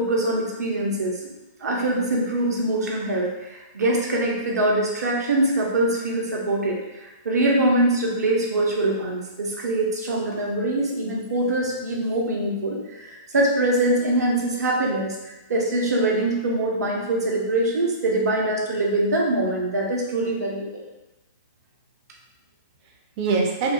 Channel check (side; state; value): both; inverted; correlation -0.34